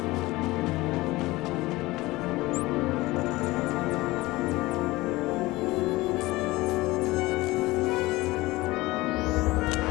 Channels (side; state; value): right; quieter; 20.0 dB